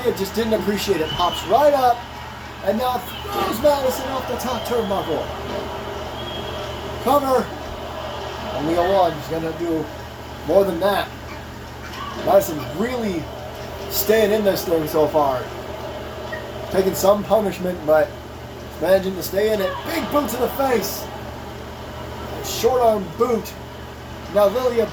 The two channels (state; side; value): identical; both; correlation 1.00